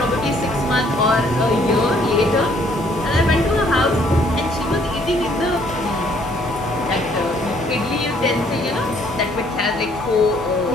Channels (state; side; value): normal; both; correlation 0.64